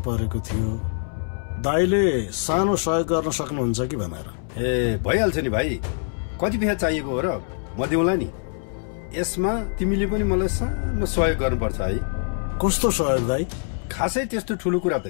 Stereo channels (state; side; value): silent; right; 63 dB below the other